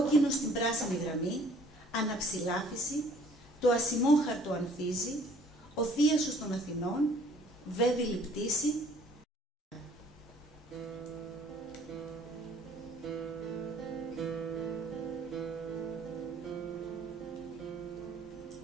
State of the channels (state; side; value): normal; both; correlation 0.57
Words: στην πράσινη γραμμή, αναψηλάφιση, το ασημόχαρτο ανθίζει, ο θίασος των Αθηνών, βέβηλη πτήση.